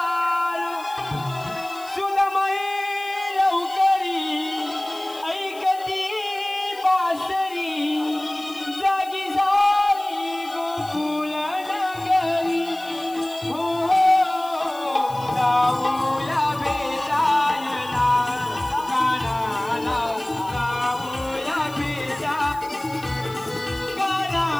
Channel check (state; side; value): noise; left; hiss, 21 dB below the sound